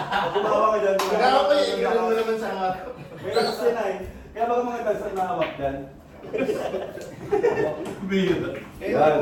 gumawa ka dyan. Nagawa ko yung gano'n mo naman sa harap. May lakas yan ay. Kaya baka mga dancer na hawak dyan. Kaya Yan.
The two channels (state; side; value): identical; both; correlation 1.00